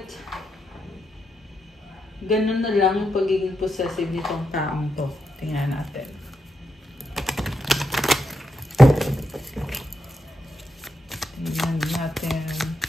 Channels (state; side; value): normal; both; correlation 0.84